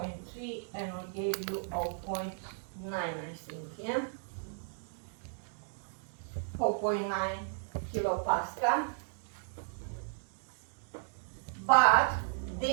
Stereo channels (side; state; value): left; silent; digital silence